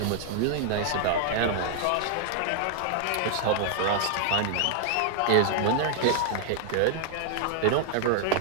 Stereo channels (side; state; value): both; different; correlation 0.00